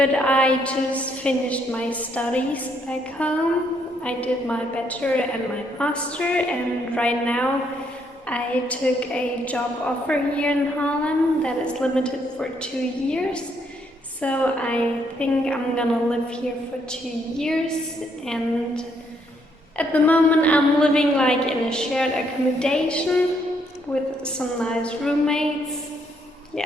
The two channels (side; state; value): both; normal; correlation 0.72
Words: I just finished my studies back home. I did my bachelor and my master, and right now I took a job offer here in Harlem that is limited for 2 years. So I think I'm gonna live here for 2 years, and at the moment I'm living like in a shared accommodation with some nice roommates.